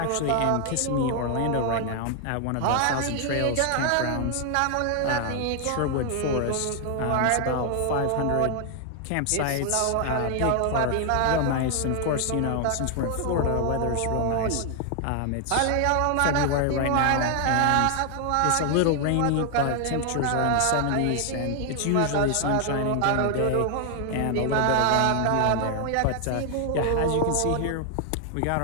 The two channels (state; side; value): different; both; correlation 0.00